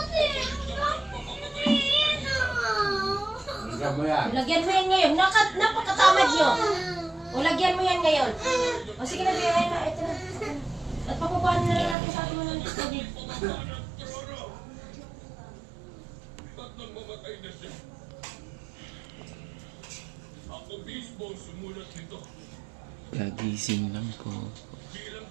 Lagyan mo yan ngayon. Napakatamad nyo. O, lagyan mo yan ngayon. O, sige na, bigyan na. Ito na. At papupahan na rin natin sa ating mga tubig. Ako mismo sumulat nito. Kagising lang po. Bilang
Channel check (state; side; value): drops out; left; at 12.0 s